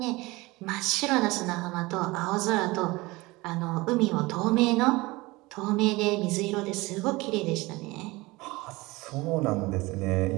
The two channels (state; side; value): quieter; left; 21.9 dB